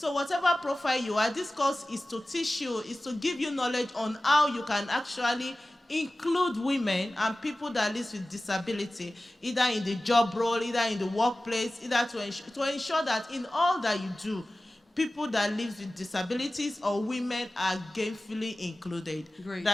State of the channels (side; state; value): both; normal; correlation 0.96